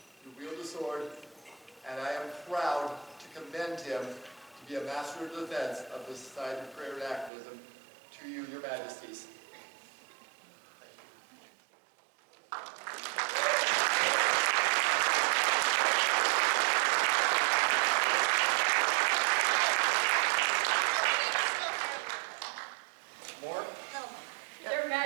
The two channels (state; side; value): drops out; left; at 7.3 s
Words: you wield a sword, and I am proud to commend him to be a master of defense of the Society of Prayer and Activism. To you, your majesties. More? Their